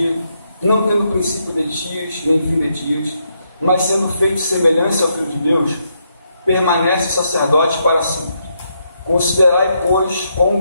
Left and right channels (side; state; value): both; inverted; correlation -0.78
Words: não tendo princípio de dias, nem fim de dias, mas sendo feito semelhança ao Filho de Deus, permanece sacerdote para sempre. Considerai, pois, quão